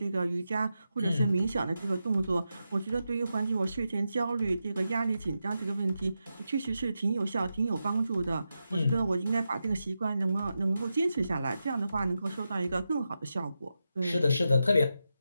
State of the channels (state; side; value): inverted; both; correlation -0.89